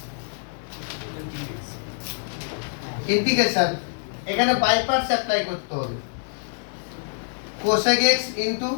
ইন্টিগ্রেশন এখানে বাই পার্টস অ্যাপ্লাই করতে হবে। cosec x into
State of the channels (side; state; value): right; silent; digital silence